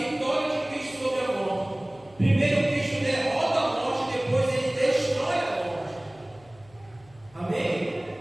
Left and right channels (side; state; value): left; noise; hum, 27 dB below the sound